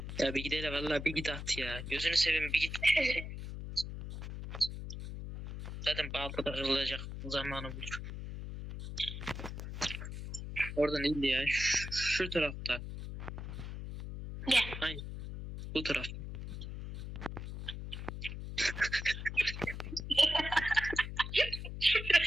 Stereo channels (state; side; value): noise; left; hum, 7 dB below the sound